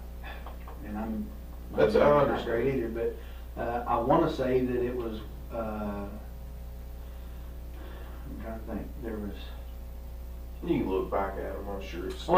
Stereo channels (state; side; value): identical; both; correlation 1.00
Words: And I'm That's not understand. great either, but I want to say that it was. I'm trying to think. There was. You can look back at them, I'm sure. I